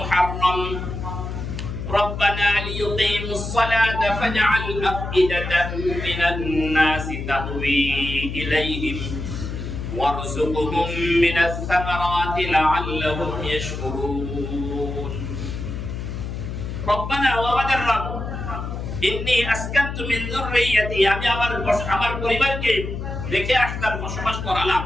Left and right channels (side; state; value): left; noise; hum, 6 dB below the sound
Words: রব্বানা লিয়ুকিমুস সালাতা ফাজ'আল আফইদাতাম মিনান নাসি তাহওয়ী ইলাইহিম ওয়ারযুকহুম মিনাস সামারাতি লা'আল্লাহুম ইয়াশকুরুন। রব্বানা ওয়া আমাদের রব ইন্নী আসকানতু মিন যুররিয়্যাতি আমি আমার পরিবারকে রেখে আসলাম, বসবাস করালাম